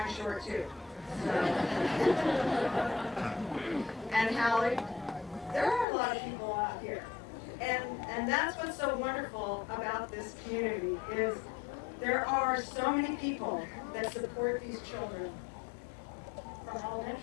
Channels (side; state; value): right; drops out; at 5.9 s